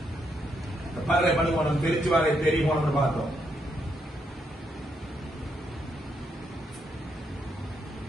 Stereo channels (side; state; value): both; normal; correlation 0.78